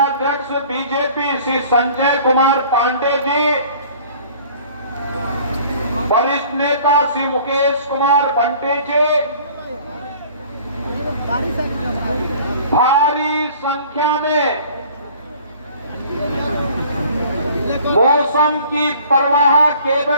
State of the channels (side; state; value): both; inverted; correlation -0.50